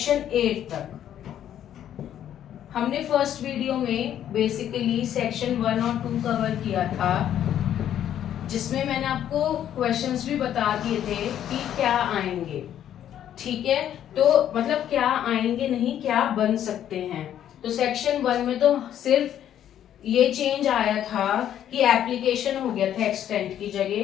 8 तक। हमने फर्स्ट वीडियो में बेसिकली सेक्शन 1 और 2 कवर किया था, जिसमें मैंने आपको क्वेश्चंस भी बता दिए थे कि क्या आएंगे। ठीक है, तो मतलब क्या आएंगे नहीं, क्या बन सकते हैं। तो सेक्शन 1 में तो सिर्फ ये चेंज आया था कि एप्लीकेशन हो गया था एक्सटेंट की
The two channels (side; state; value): right; quieter; 10.6 dB